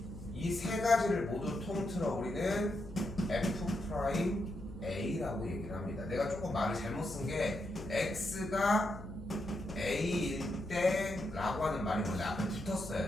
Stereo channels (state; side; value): noise; left; hum, 13 dB below the sound